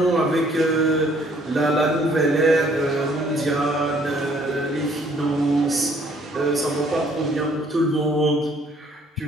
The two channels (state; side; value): normal; both; correlation 0.62